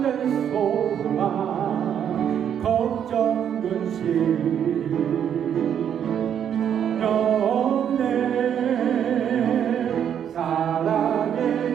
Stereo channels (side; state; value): left; quieter; 9.0 dB